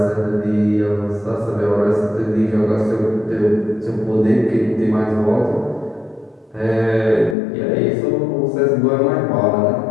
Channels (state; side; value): drops out; right; at 7.4 s